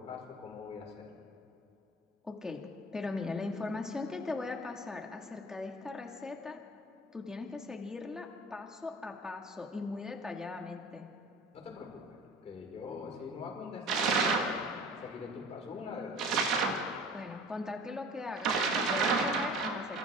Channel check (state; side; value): normal; both; correlation 0.43